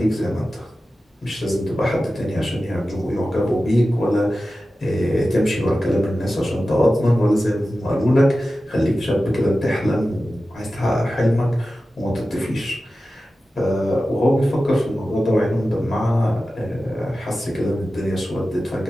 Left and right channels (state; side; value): normal; both; correlation 0.94